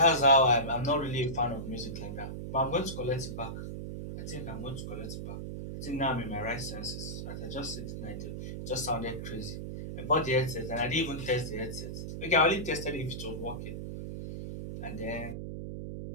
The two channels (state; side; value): noise; right; hum, 6 dB below the sound